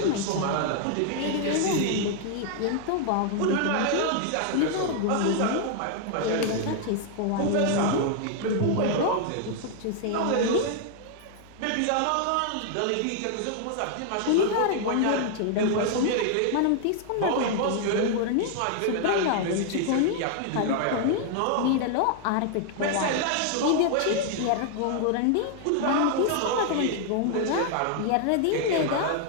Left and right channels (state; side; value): different; both; correlation 0.00